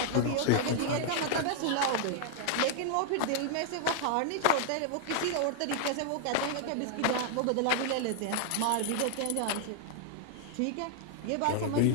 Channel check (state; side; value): different; both; correlation 0.00